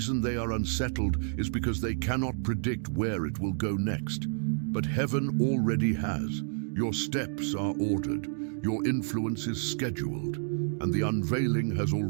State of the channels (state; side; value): silent; left; digital silence